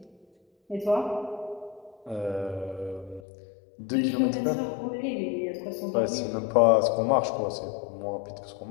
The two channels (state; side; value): drops out; right; at 3.2 s